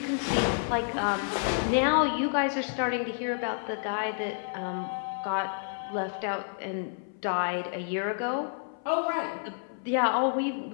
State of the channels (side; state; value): right; silent; 58 dB below the other